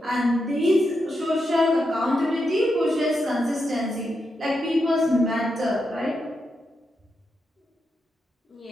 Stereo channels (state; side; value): normal; both; correlation 0.85